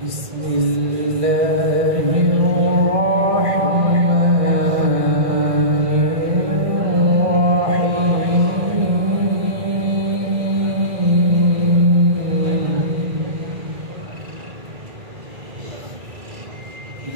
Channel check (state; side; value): late; left; 1.6 ms